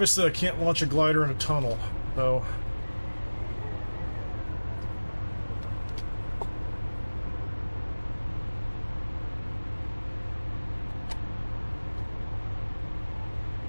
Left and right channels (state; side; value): inverted; both; correlation -1.00